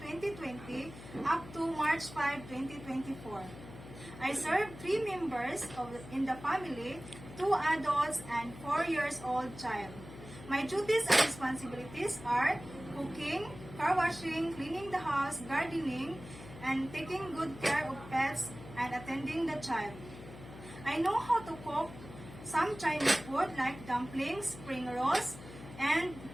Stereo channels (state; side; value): noise; left; hum, 15 dB below the sound